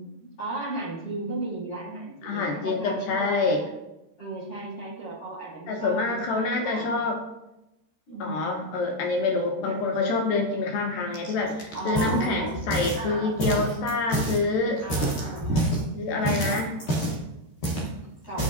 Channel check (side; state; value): right; late; 13 ms